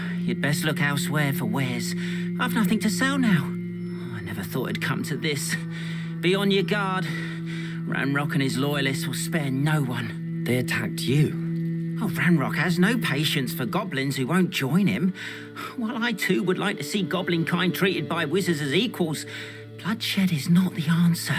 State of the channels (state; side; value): identical; both; correlation 1.00